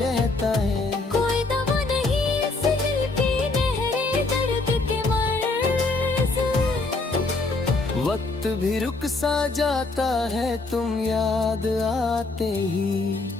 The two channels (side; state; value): right; quieter; 3.5 dB